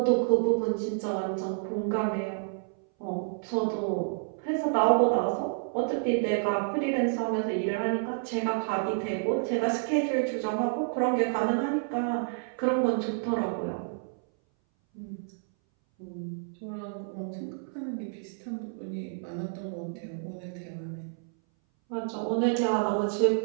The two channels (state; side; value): silent; left; 58 dB below the other